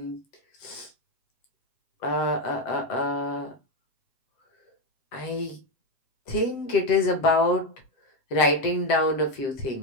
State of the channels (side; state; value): right; late; 7.7 ms